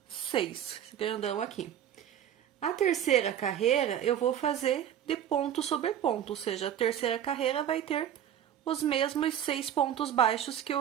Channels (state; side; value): quieter; left; 10.1 dB